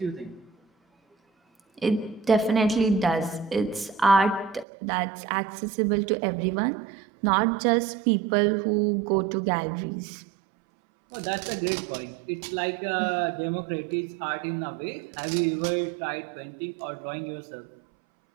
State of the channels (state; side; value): drops out; left; at 4.7 s